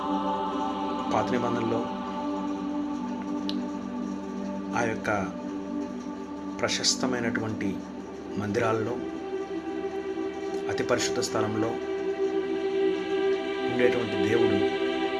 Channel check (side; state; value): both; identical; correlation 1.00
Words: పాత నిబంధనలో ఆ యొక్క ప్రశస్తమైనటువంటి మందిరాల్లో, అతి పరిశుద్ధ స్థలంలో ఉండేటువంటి దేవుడు